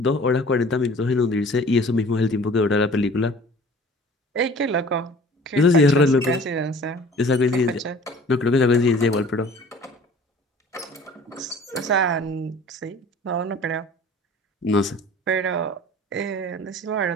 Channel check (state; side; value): normal; both; correlation 0.47